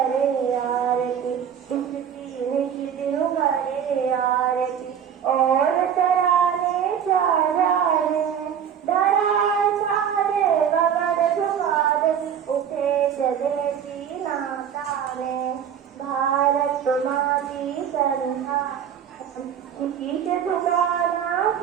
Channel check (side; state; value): left; quieter; 8.5 dB